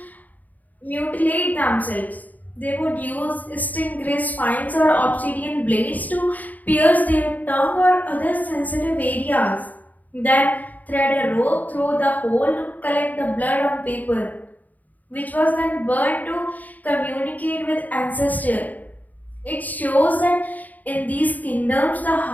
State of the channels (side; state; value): right; late; 0.079 ms